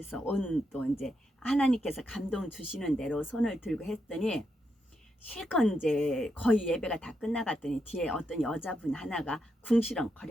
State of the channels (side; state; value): both; normal; correlation 0.82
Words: 또 이제 하나님께서 감동 주시는 대로 손을 들고 했더니 실컷 이제 거의 예배가 다 끝나갔더니 뒤에 어떤 여자분 하나가